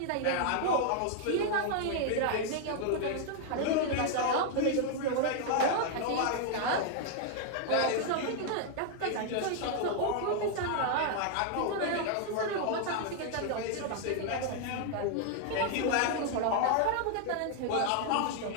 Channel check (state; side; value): different; both; correlation 0.00